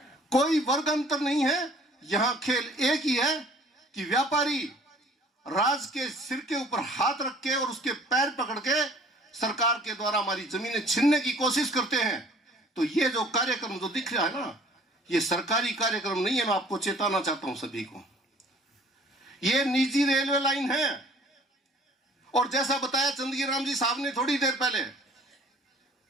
कोई वर्ग अंतर नहीं है। यहां खेल एक ही है कि व्यापारी राज के सिर के ऊपर हाथ रख के और उसके पैर पकड़ के सरकार के द्वारा हमारी जमीनें छीनने की कोशिश करते हैं। तो ये जो कार्यक्रम जो दिख रहा है ना, ये सरकारी कार्यक्रम नहीं है। मैं आपको चेताना चाहता हूं सभी को, ये निजी रेलवे लाइन है। और जैसा बताया चंदगी राम जी साहब ने थोड़ी देर पहले,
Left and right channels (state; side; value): normal; both; correlation 0.54